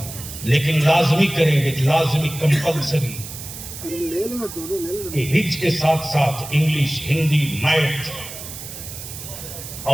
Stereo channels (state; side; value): noise; right; hiss, 11 dB below the sound